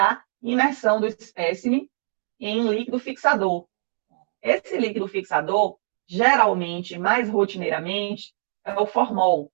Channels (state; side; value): silent; left; digital silence